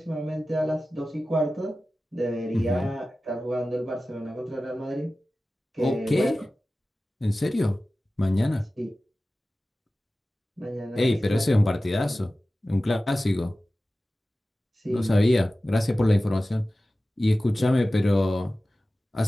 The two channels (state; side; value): normal; both; correlation 0.96